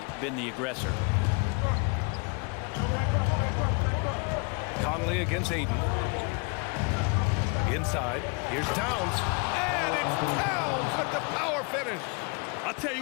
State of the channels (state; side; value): quieter; right; 32.4 dB